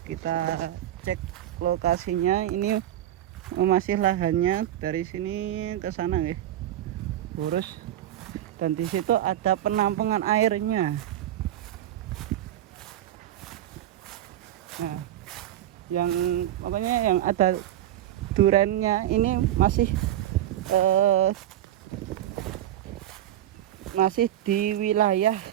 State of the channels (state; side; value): quieter; left; 12.5 dB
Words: Kita cek lokasinya. Ini masih lahannya dari sini ke sana nggih. Lurus. Dan di situ ada penampungan airnya. Nah, yang ada durannya ini masih di wilayah